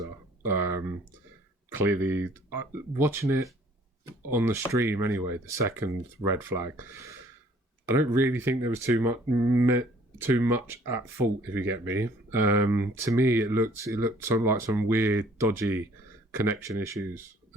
Clearly, watching it on the stream anyway, the second red flag, I don't really think there was too much at fault, if you get me. To me, it looked like some weird, dodgy connection issues.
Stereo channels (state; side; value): normal; both; correlation 0.57